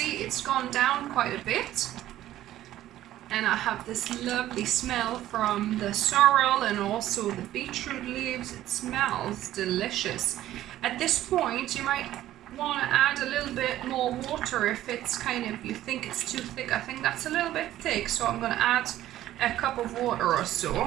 it's gone down quite a bit. And I have this lovely smell from the sorrel and also the beetroot leaves. It smells delicious. At this point, you might want to add a little bit more water if it's you think it's too thick. I think that's a little bit thick, so I'm going to add a cup of water or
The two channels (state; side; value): quieter; left; 13.7 dB